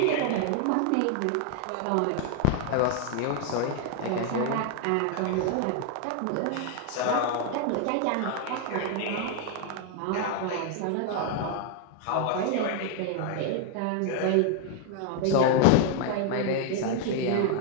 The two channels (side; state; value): both; different; correlation 0.00